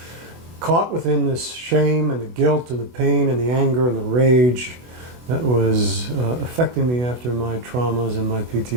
caught within this shame and the guilt and the pain and the anger and the rage that was affecting me after my traumas and my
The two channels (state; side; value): late; left; 24 ms